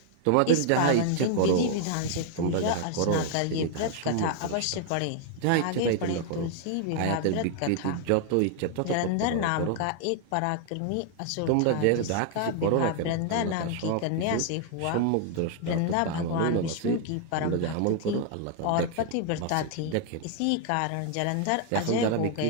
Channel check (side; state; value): both; different; correlation 0.00